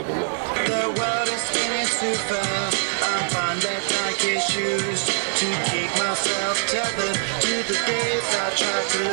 a lot. The world is spinning too fast. I find that Nike shoes to keep myself tethered to the days I tried to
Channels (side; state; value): left; silent; 63 dB below the other